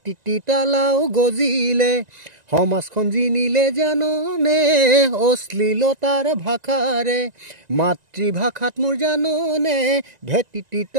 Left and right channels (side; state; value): left; late; 1.9 ms